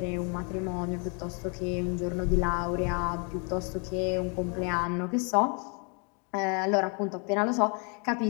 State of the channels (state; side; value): quieter; right; 36.5 dB